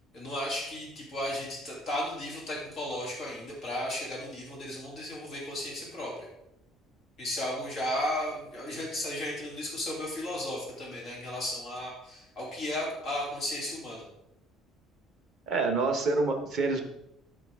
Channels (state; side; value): normal; both; correlation 0.58